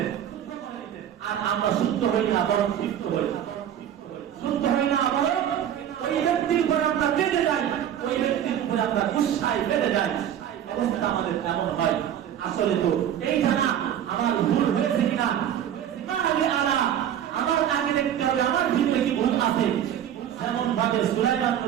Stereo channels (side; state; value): left; quieter; 10.2 dB